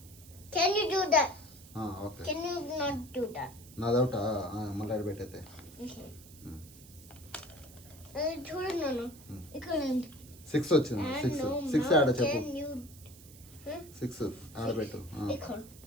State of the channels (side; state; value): right; noise; hiss, 20 dB below the sound